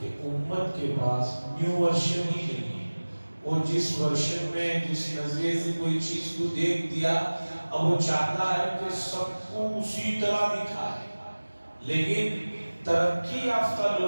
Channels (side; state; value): both; inverted; correlation -1.00